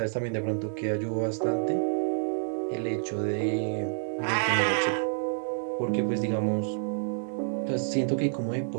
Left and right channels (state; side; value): silent; left; digital silence